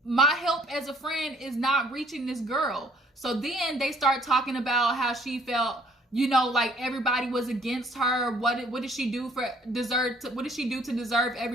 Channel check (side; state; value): both; normal; correlation 0.60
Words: my help as a friend is not reaching this girl. So then they start talking about how she felt, like everybody was against her. What did she do what did she do to deserve